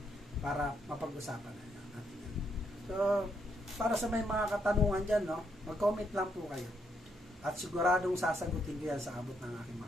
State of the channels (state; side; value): normal; both; correlation 0.76